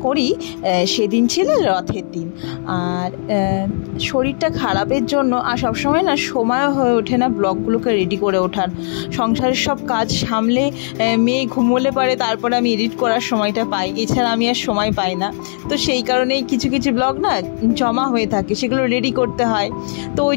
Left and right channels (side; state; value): right; silent; digital silence